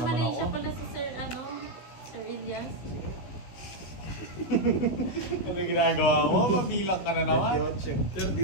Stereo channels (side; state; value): right; late; 16 ms